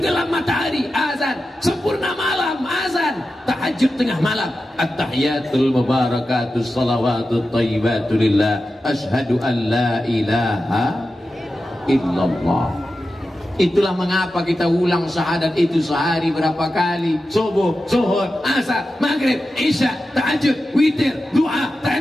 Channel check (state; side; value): normal; both; correlation 0.92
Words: matahari, azan. Sempurna malam, azan. Tahajud tengah malam, at-tahiyatul mubarakatus salawatut thayyibatu lillah, asyhadu an la ilaha illallah. Itulah mengapa kita ulang syahadat itu sehari berapa kali. Subuh, zuhur, asar, maghrib, isya, tahajud, witir, du'a,